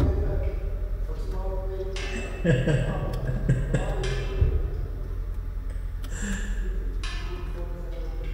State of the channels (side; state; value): both; identical; correlation 1.00